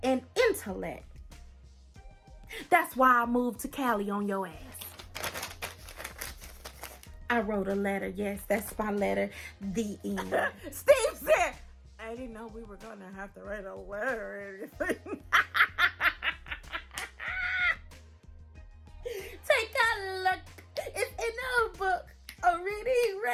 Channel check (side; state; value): both; identical; correlation 1.00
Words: and intellect. That's why I moved to Cali on your ass. I wrote a letter. Yes, that's my letter. The end. Steve said, I didn't know we were going to have to write a letter or anything. Take a look. It's in a book. A reading